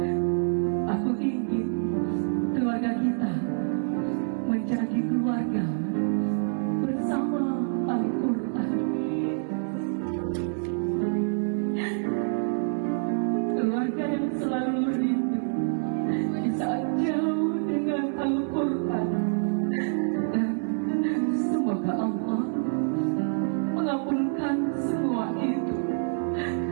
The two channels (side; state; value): left; silent; 60 dB below the other